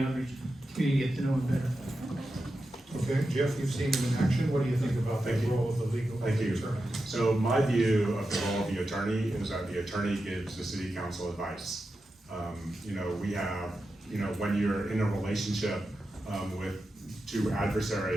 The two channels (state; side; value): normal; both; correlation 0.90